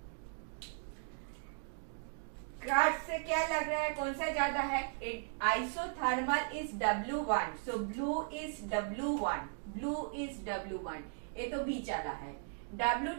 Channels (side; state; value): left; silent; digital silence